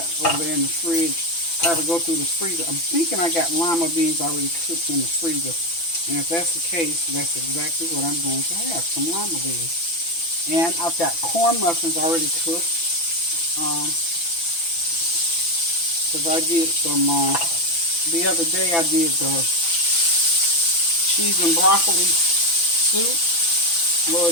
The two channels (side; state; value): right; late; 6.0 ms